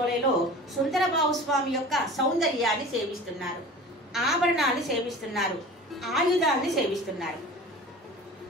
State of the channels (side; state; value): both; normal; correlation 0.39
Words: సుందరబాబు స్వామి యొక్క సౌందర్యాన్ని సేవిస్తున్నారు. ఆభరణాన్ని సేవిస్తున్నారు. ఆయుధాన్ని సేవిస్తున్నారు.